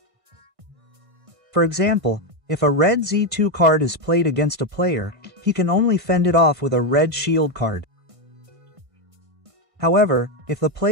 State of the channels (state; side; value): late; left; 1.6 ms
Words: For example, if a red Z2 card is played against a player, he can only fend it off with a red shield card. However, if the